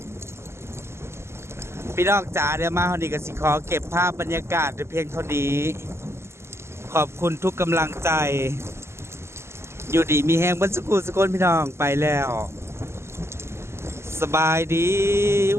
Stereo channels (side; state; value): left; late; 0.13 ms